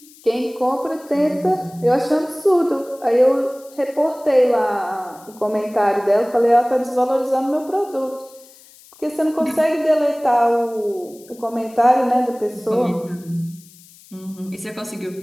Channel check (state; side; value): noise; left; hiss, 24 dB below the sound